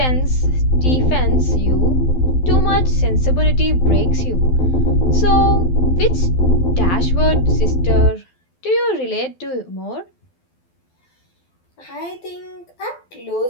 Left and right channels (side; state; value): right; late; 12 ms